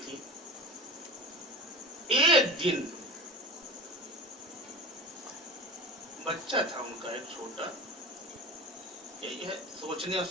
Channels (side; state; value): both; normal; correlation 0.33